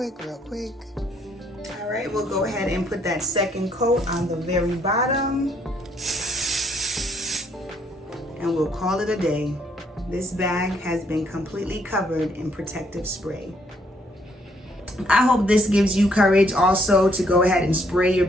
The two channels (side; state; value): both; normal; correlation 0.69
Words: All right, we'll go ahead and put that second coat on the very bottom. And we'll call it a day. This bag has been completely covered in protective spray. I hope this gives you courage also to go ahead and spray your